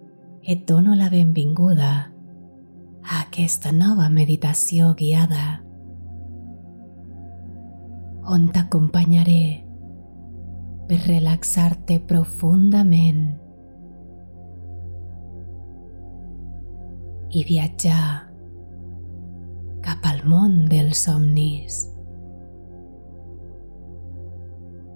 Et dono la benvinguda a aquesta nova meditació guiada on t'acompanyaré per relaxar-te profundament i viatjar cap al món dels somnis.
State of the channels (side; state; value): both; inverted; correlation -1.00